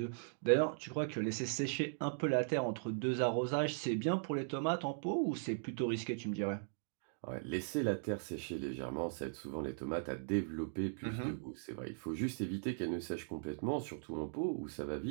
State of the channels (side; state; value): left; silent; digital silence